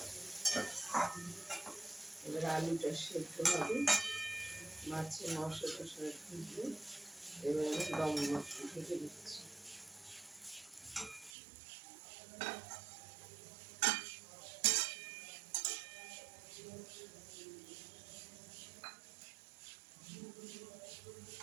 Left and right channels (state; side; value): drops out; left; at 11.3 s